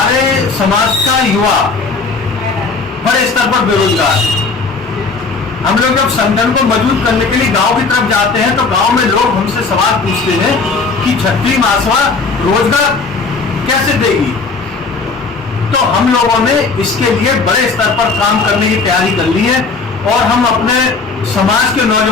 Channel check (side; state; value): right; quieter; 4.2 dB